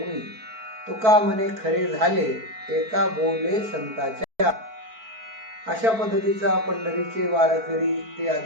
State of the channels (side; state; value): left; late; 4.5 ms